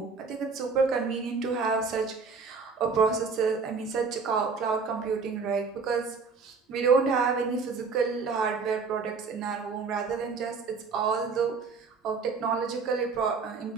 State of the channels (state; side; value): quieter; left; 4.9 dB